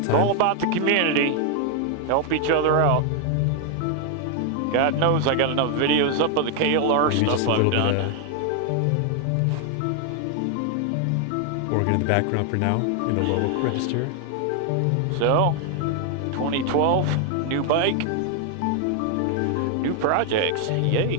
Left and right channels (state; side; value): different; both; correlation 0.00